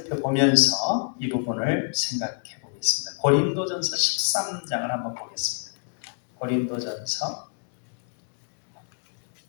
이 부분을 생각해 보겠습니다. 고린도전서 13장을 한번 보겠습니다. 고린도전서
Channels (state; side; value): silent; right; 60 dB below the other